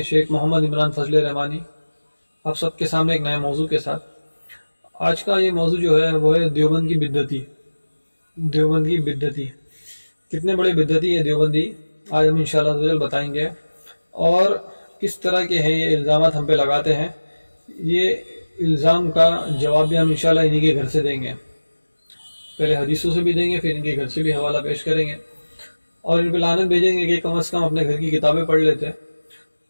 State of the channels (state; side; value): inverted; both; correlation -1.00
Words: شیخ محمد عمران فضل رحمانی آپ سب کے سامنے ایک نئے موضوع کے ساتھ۔ آج کا یہ موضوع جو ہے وہ ہے دیوبند کی بدعتی۔ دیوبند کی بدعتی کتنے بڑے بدعتی ہے دیوبندی، آج ہم انشاءاللہ بتائیں گے، اور کس طرح کے ہیں یہ الزامات ہم پہ لگاتے ہیں۔ یہ الزام کا جواب بھی ہم انشاءاللہ انہی کے گھر سے دیں گے، پہلے حدیثوں سے بھی دیں گے، پھر ان کے گھر سے بھی حوالہ پیش کریں گے، اور ان پہ لعنت بھیجیں گے کہ کم از کم اپنے گھر کی کتابیں پڑھ لیتے